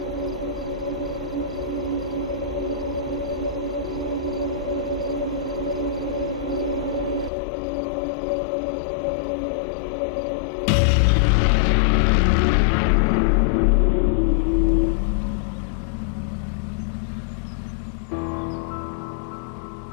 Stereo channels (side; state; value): right; drops out; at 7.3 s